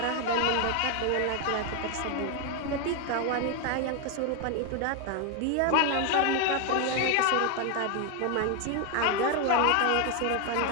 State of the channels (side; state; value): both; different; correlation 0.01